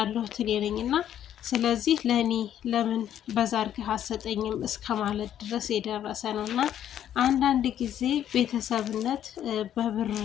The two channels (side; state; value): right; quieter; 10.6 dB